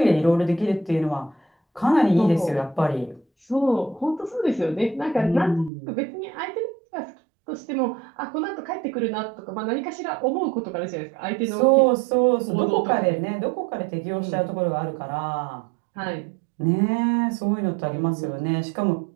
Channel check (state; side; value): drops out; left; at 5.7 s